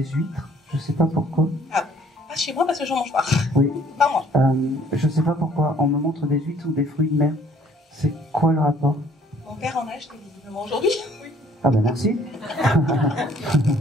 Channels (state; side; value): normal; both; correlation 0.59